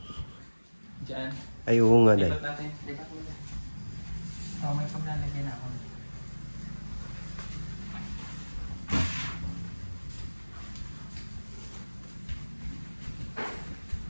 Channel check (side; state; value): both; inverted; correlation -1.00